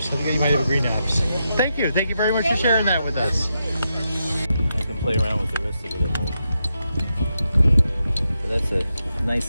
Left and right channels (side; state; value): both; inverted; correlation -0.85